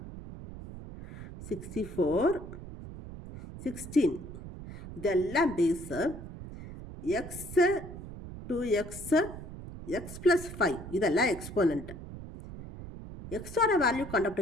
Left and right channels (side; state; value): right; noise; rumble, 12 dB below the sound